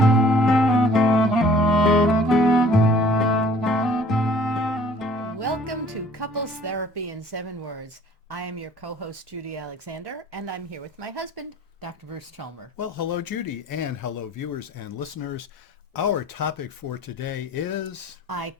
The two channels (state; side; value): normal; both; correlation 0.54